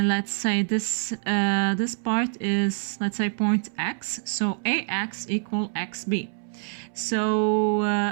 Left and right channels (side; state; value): left; silent; 61 dB below the other